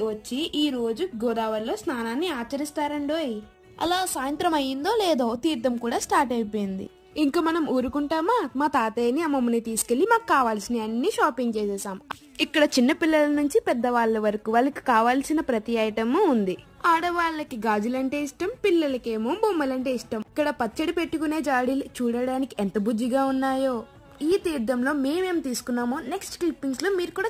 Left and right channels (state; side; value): identical; both; correlation 1.00